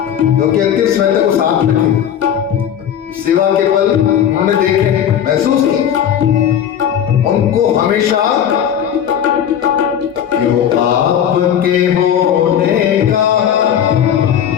जो कि अंतिम समय तक वो साथ में थे, सेवा के पल उन्होंने देखे, महसूस की, उनको हमेशा क्यों आपके होने का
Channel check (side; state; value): right; quieter; 9.3 dB